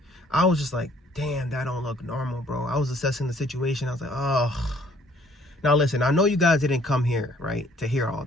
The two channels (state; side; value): normal; both; correlation 0.61